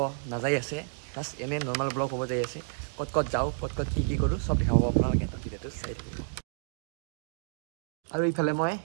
নাযায় আছে প্লাছ এনে নৰ্মেল ব্লগ হ'ব যাই আছে ক'ত ক'ত যাওঁ ক'ত ক'ত কি কৰোঁ চব দেখাব আপোনালোকে ভিডিঅ'টো চাই থাকিব আৰু ইফালে মই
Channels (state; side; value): silent; left; digital silence